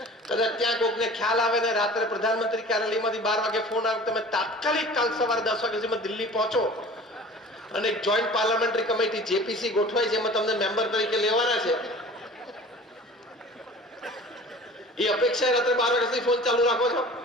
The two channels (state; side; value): normal; both; correlation 0.43